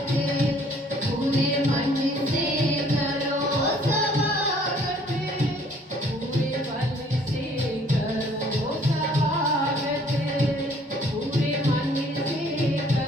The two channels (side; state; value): both; normal; correlation 0.59